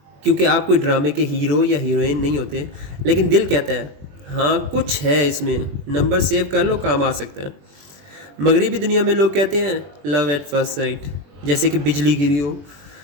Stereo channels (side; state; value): left; late; 21 ms